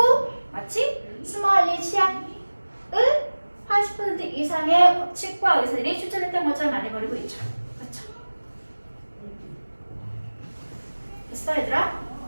마치 스마일리 치약을 80% 이상의 치과 의사들이 추천했던 것처럼 말해버리고 있죠. 그렇죠? 됐어 얘들아?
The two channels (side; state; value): both; inverted; correlation -1.00